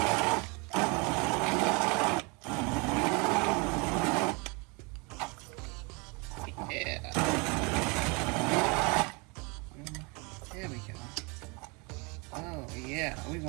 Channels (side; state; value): left; quieter; 30.0 dB